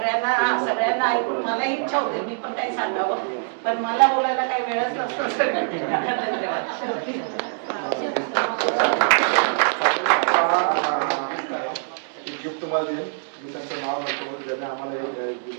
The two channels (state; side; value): silent; left; digital silence